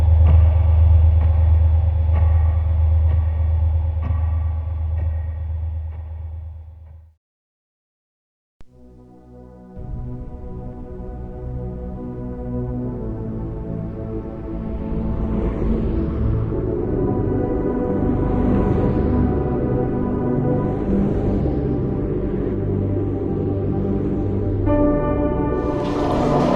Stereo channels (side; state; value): both; identical; correlation 1.00